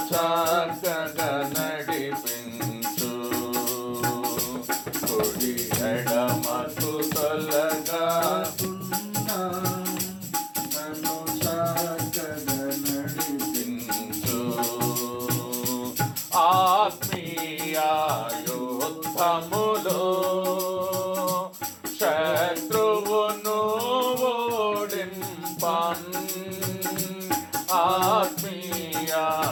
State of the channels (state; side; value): identical; both; correlation 1.00